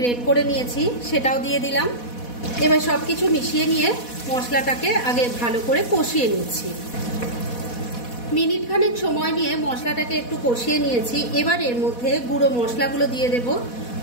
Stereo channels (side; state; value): right; late; 4.1 ms